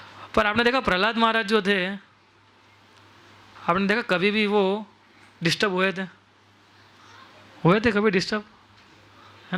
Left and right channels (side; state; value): both; identical; correlation 1.00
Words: पर आपने देखा प्रहलाद महाराज जो थे, आपने देखा कभी भी वो डिस्टर्ब हुए थे कभी डिस्टर्ब,